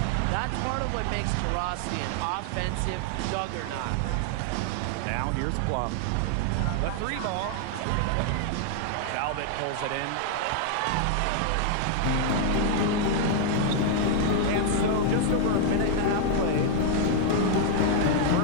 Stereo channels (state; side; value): different; both; correlation 0.00